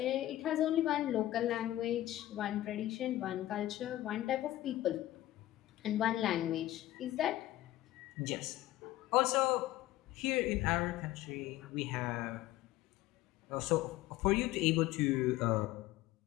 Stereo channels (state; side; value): quieter; right; 15.1 dB